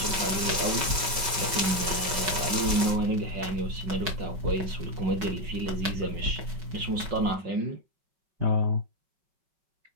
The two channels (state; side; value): late; left; 5.2 ms